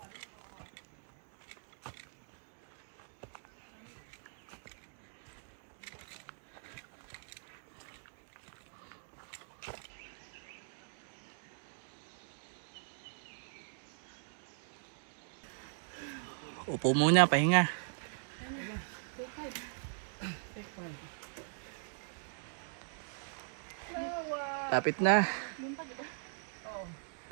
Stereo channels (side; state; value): left; silent; digital silence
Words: Upo muna, pahinga. Tapit na.